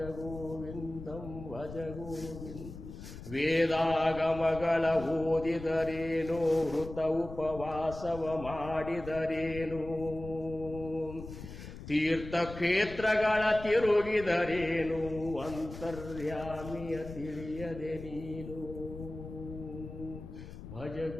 ಗೋವಿಂದಂ ಭಜ ಗೋವಿಂದ. ವೇದಾಗಮಗಳ ಓದಿದರೇನು ವೃತ ಉಪವಾಸವ ಮಾಡಿದರೇನು ತೀರ್ಥಕ್ಷೇತ್ರಗಳ ತಿರುಗಿದರೇನು ಅಂತರ್ಯಾಮಿಯ ತಿಳಿಯದೆ ನೀನು. ಭಜ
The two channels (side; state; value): left; noise; rumble, 12 dB below the sound